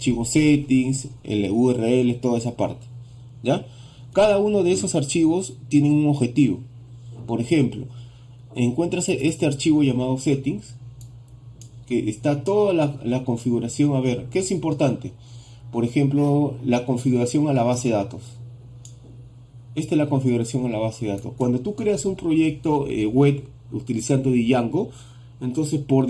settings, el URL, toda esa parte. ¿Ya? Cada uno de esos archivos tiene un objetivo. Por ejemplo, encuentras este archivo llamado settings, que está toda la configuración. A ver, ¿qué es importante? Por ejemplo, la configuración a la base de datos. Esta es la configuración a la base de datos. Cuando tú creas un proyecto web utilizando Django, entonces por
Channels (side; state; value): both; identical; correlation 1.00